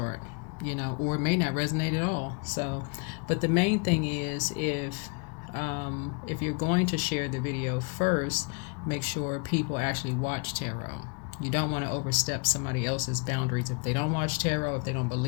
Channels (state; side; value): quieter; right; 33.5 dB